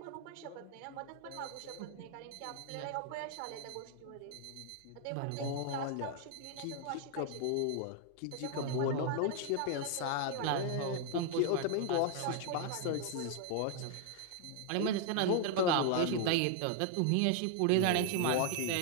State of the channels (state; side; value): different; both; correlation 0.00